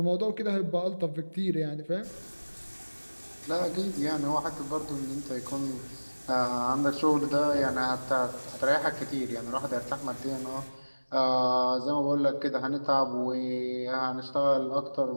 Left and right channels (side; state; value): both; inverted; correlation -1.00